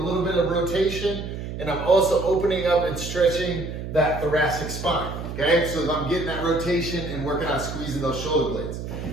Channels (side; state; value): right; noise; hum, 7 dB below the sound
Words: bit of rotation, and I'm also opening up and stretching that thoracic spine, okay? So I'm getting that rotation and working on squeezing those shoulder blades.